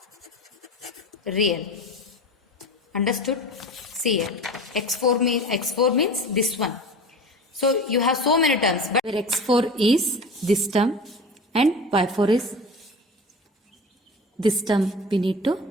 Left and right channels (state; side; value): normal; both; correlation 0.34